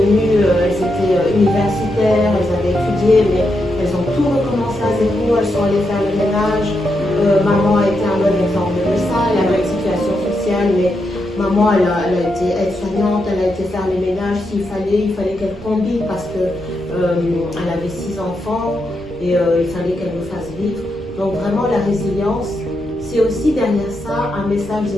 elles étaient universitaires, elles avaient étudié, mais elles ont tout recommencé à zéro, elles sont allées faire le ménage. Maman a été un bon exemple de ça, elle avait une situation sociale, mais maman, elle a été aide-soignante, elle a été faire les ménages s'il fallait, il fallait qu'elle combine parce que elle avait 6 enfants et il fallait qu'elle nous fasse vivre. Donc vraiment la résilience, c'est aussi derrière ça un message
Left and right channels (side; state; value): right; noise; rumble, 19 dB below the sound